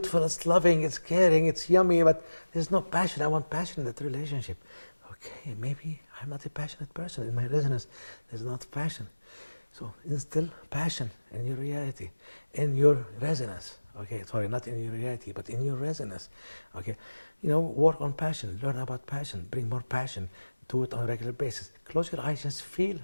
it's loving, it's caring, it's yummy, but there's no passion. I want passion in that relationship. Okay, maybe I'm not a passionate person. In my resonance, there's not passion. So instill passion in your reality, in your resonance. Okay, sorry, not in your reality, but in your resonance. Okay, work on passion, learn about passion, bring more passion, do it on a regular basis. Close your eyes, just feel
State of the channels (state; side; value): inverted; both; correlation -1.00